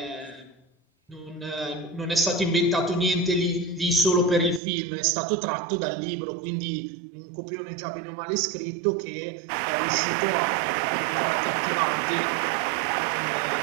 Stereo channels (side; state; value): left; drops out; at 4.6 s